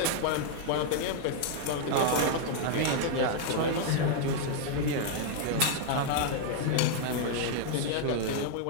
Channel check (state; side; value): different; both; correlation 0.00